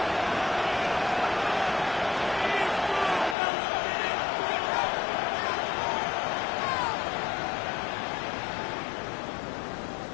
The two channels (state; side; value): drops out; right; at 3.4 s